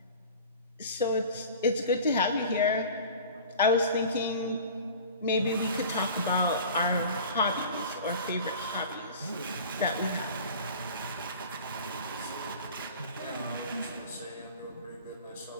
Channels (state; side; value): inverted; both; correlation -0.40